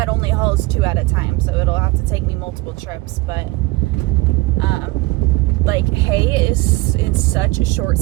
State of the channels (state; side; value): quieter; left; 21.4 dB